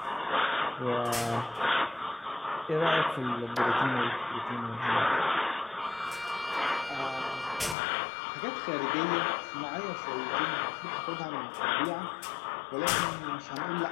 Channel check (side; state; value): right; drops out; at 7.8 s